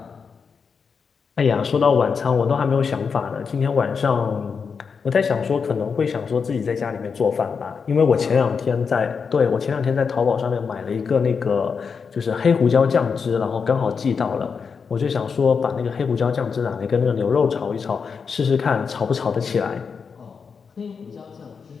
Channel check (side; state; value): right; quieter; 5.8 dB